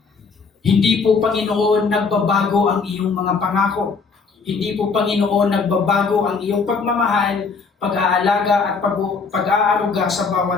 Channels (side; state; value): right; quieter; 4.9 dB